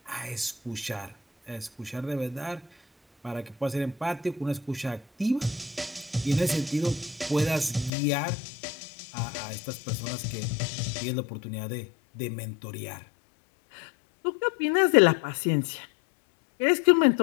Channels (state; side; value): drops out; right; at 7.9 s